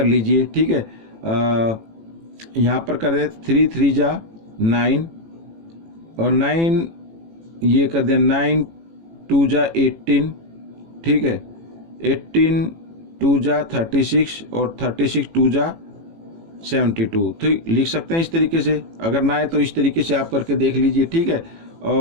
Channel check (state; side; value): late; left; 18 ms